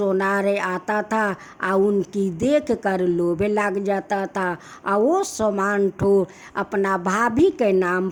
आता था और उनकी देख कर लोभ लग जाता था, और वो सामान ठो अपना भाभी के नाम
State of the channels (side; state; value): both; identical; correlation 1.00